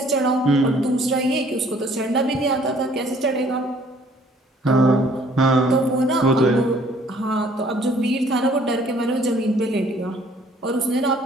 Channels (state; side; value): normal; both; correlation 0.59